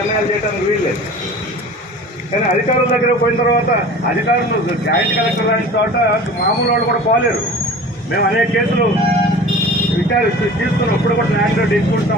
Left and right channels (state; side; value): normal; both; correlation 0.40